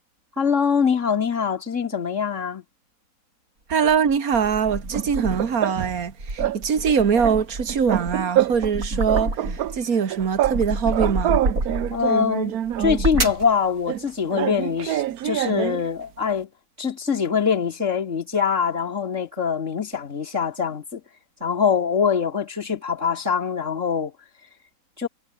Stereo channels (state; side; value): late; left; 4.0 ms